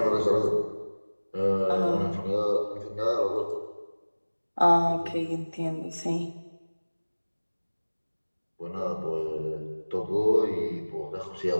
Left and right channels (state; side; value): inverted; both; correlation -1.00